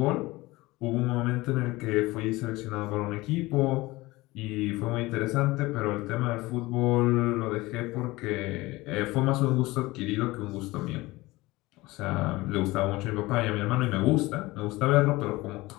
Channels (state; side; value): quieter; right; 20.4 dB